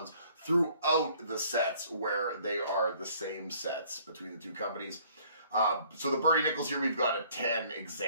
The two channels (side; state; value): both; inverted; correlation -0.58